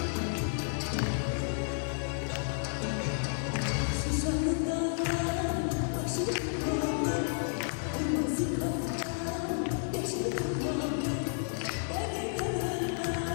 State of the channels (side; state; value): right; silent; digital silence